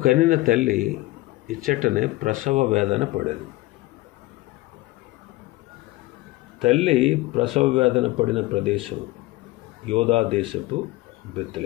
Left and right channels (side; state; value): right; quieter; 19.5 dB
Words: కనిన తల్లి ఇచ్చటనే ప్రసవ వేదన పడేది. తల్లి ప్రసవ వేదన పడిన ప్రదేశం యోధా దేశపు